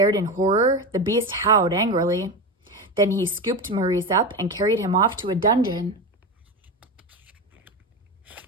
in horror, the beast howled angrily. Then he scooped Maurice up and carried him off to a dungeon.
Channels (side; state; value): both; normal; correlation 0.20